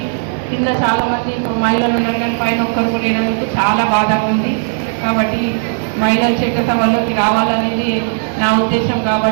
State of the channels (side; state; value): left; silent; 70 dB below the other